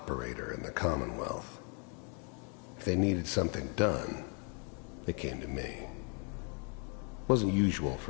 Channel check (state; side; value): quieter; right; 37.8 dB